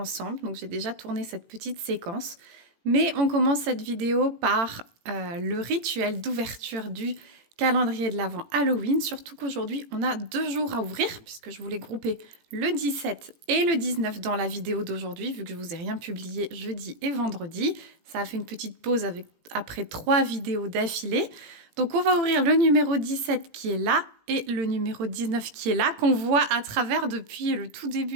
donc j'ai déjà tourné cette petite séquence. Mais on commence cette vidéo par le rituel d'ouverture du calendrier de l'Avent Halloween. Surtout qu'aujourd'hui, on a 2 jours à ouvrir, puisque je voulais grouper le 17 et le 19 dans la vidéo d'aujourd'hui, vu que je vous ai rien publié jeudi et vendredi. Ça a fait une petite pause après 3 vidéos d'affilée. Donc on va ouvrir le numéro 17 qui est là et le numéro 19 qui est là, qu'on voit à travers depuis le tout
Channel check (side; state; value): left; late; 18 ms